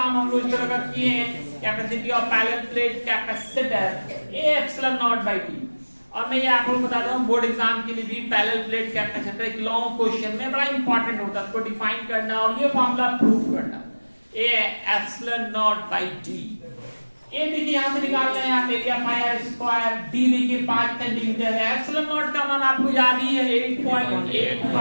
हम लोग इस तरह का किए हैं। Capacity of parallel plate capacitor A epsilon naught by T। और मैं ये आपको बताता हूँ, बोर्ड एग्जाम के लिए भी पैरेलल प्लेट कैपेसिटर एक लॉन्ग क्वेश्चन में बड़ा इंपॉर्टेंट होता है, उसको डिफाइन करना और ये फॉर्मूला प्रूफ करना। A epsilon naught by T। A देखिए यहाँ से निकालना है, आप area pi R square. D देखिए 5 सेंटीमीटर है। एप्सिलॉन नॉट का मान आपको याद ही है,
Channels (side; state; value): both; inverted; correlation -1.00